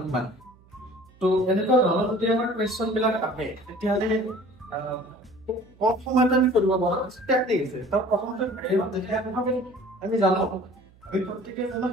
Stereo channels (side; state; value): right; noise; hum, 28 dB below the sound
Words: কিমান তো এনেকুৱা ধৰণৰ যদি আমাৰ কোৱেশ্চন বিলাক আহে তেতিয়াহ'লে কম সময়তে আমি কৰিব পাৰো টেকনিক আছে তাৰ প্ৰথমতে আমি জানো আমি প্ৰত্যেককে জানো